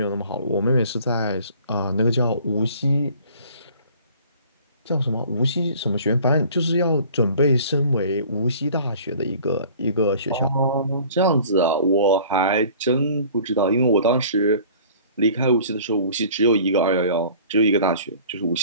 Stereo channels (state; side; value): inverted; both; correlation -0.49